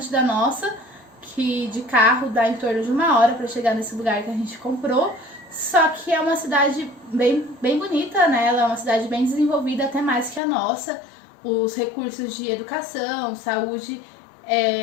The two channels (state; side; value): drops out; right; at 10.4 s